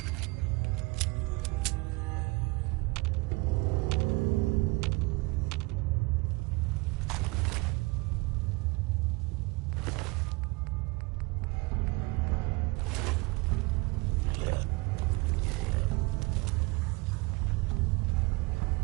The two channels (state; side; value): quieter; left; 25.3 dB